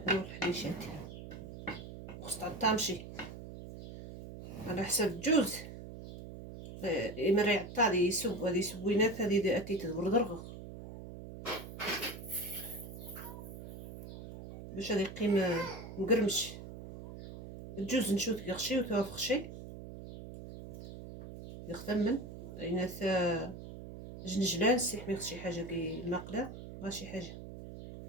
الحليشات خص تعطامشي على حساب جوز إما يعطى هادي يسوب هادي سوينات هادي أتي تدبر درغ باش هادي يقيم مقرمش الجوز نشوت يغشي وتوافخشي يختمن إناث جنجلان سيح ميخ شي حاجة كي الماقلة بغا شي حاجة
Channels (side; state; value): right; noise; hum, 12 dB below the sound